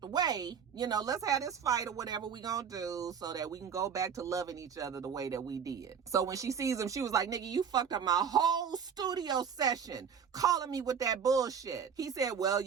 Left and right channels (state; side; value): quieter; left; 7.2 dB